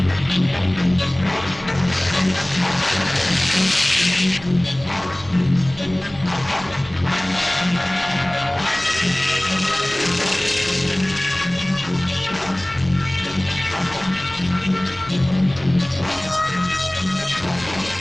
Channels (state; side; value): noise; right; hum, 20 dB below the sound